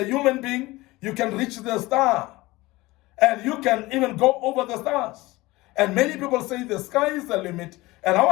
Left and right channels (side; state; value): right; quieter; 20.2 dB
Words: human being, you can reach the star, and you can even go over the stars. And many people say the sky is the limit, and I